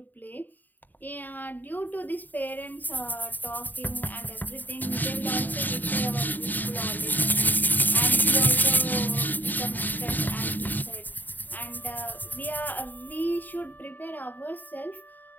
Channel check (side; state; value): right; late; 0.088 ms